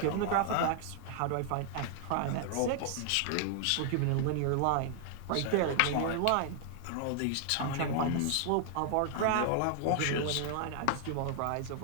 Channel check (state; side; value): different; both; correlation 0.00